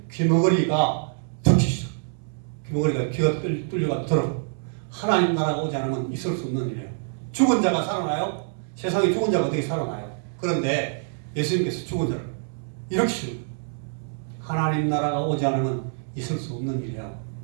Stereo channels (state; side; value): silent; left; 61 dB below the other